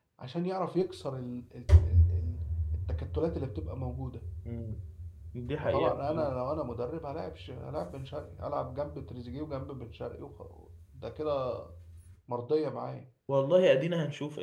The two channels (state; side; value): identical; both; correlation 1.00